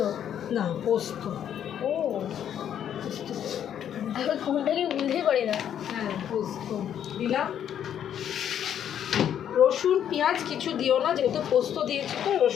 না পোস্ত। ও ফোনটাকে বুঝতেই পারি না। হ্যাঁ পোস্ত দিলাম। রসুন পেঁয়াজ কিছু দিও না, যেহেতু পোস্ত দিয়েছি তো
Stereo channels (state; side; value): quieter; right; 9.6 dB